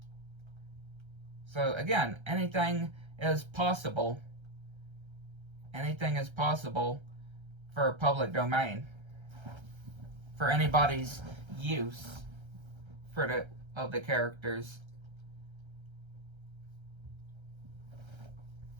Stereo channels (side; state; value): left; late; 1.3 ms